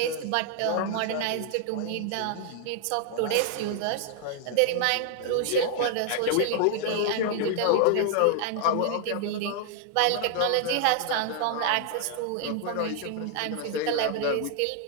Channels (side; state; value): both; different; correlation 0.00